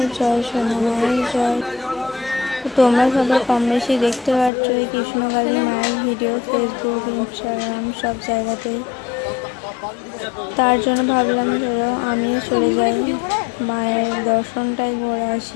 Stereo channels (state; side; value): drops out; right; at 4.5 s